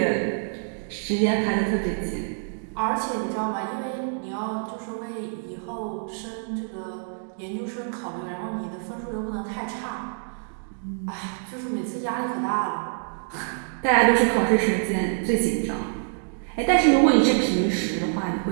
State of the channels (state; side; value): silent; left; digital silence